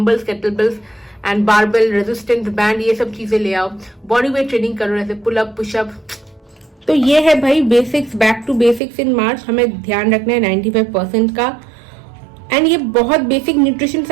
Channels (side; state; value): left; drops out; at 8.8 s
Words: kettlebells and barbell, resistance band, ये सब चीजें ले आओ। बॉडी वेट ट्रेनिंग करो, जैसे पुलअप, पुशअप। तो ये है भाई बेसिक्स, बैक टू बेसिक्स इन मार्च। हमें ध्यान रखना है 95% का। एंड ये बहुत बेसिक न्यूट्रिशन